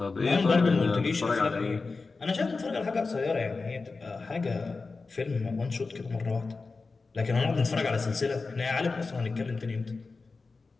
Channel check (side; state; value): right; quieter; 4.1 dB